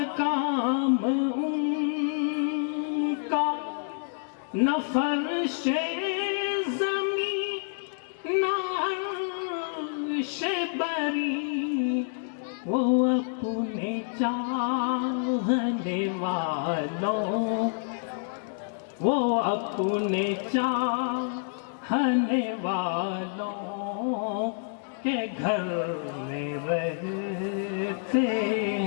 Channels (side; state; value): right; silent; digital silence